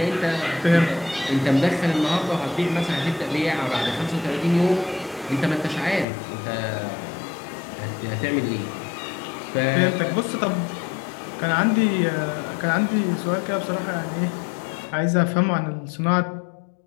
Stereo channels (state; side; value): drops out; right; at 6.1 s